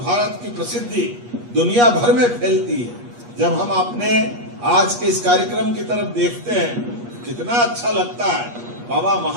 की प्रसिद्धि दुनिया भर में फैलती है। जब हम अपने आज के इस कार्यक्रम की तरफ देखते हैं, कितना अच्छा लगता है। बाबा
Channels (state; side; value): late; left; 8.4 ms